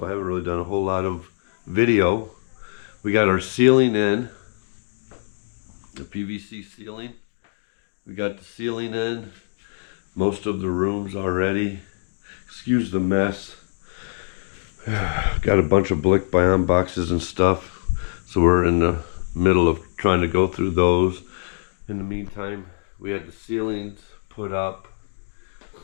I haven't really done a whole lot of video. We got our ceiling in, the PVC ceiling. We got the ceiling in, most of the rooms already. Excuse the mess. Got a bunch of Blick Bion boxes and stuff, so we're in the middle of trying to go through those. In the meantime, we had the ceilings put up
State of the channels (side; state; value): right; silent; digital silence